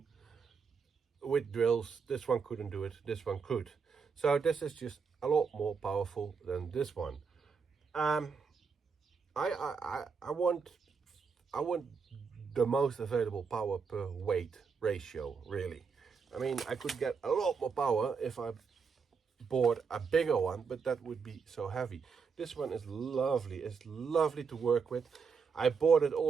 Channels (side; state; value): left; quieter; 5.6 dB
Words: with drills. This one couldn't do it, this one could. So this is just a lot more powerful than this one. I want the most available power per weight ratio, really. I mean, I could get a lot more power if I bought a bigger one, but that would be so heavy. This one is lovely. It's lovely to work with. I bought it